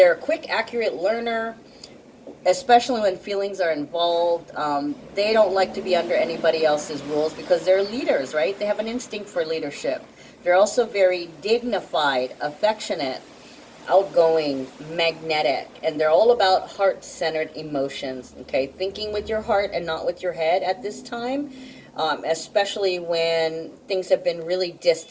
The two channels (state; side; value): identical; both; correlation 1.00